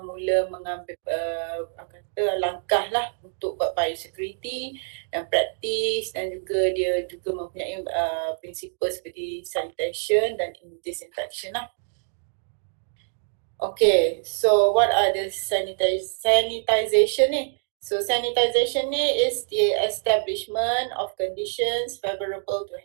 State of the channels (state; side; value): silent; left; digital silence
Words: mula mengambil langkah lah untuk buat biosecurity dan practice, dan juga dia juga mempunyai prinsipal seperti sanitation dan disinfection lah. Okay, so what are the sanitization ni? So sanitization ni is the establishment of conditions favorable to